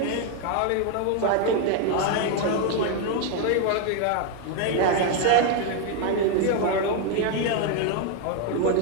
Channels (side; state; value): both; different; correlation 0.01